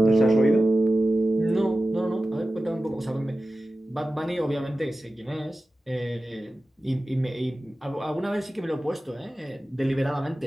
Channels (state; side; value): normal; both; correlation 0.94